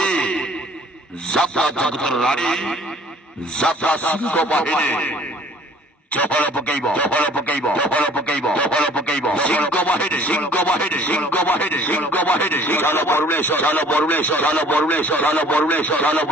যাত্রা জগতের রানী যাত্রা সিংহ বাহিনী চহল পকাইব চহল পকাইব চহল পকাইব চহল পকাইব সিংহ বাহিনী সিংহ বাহিনী সিংহ বাহিনী সিংহ বাহিনী চলো বরুণেশ্বর চলো বরুণেশ্বর চলো বরুণেশ্বর চলো বরুণেশ্বর চলো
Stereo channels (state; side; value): normal; both; correlation 0.53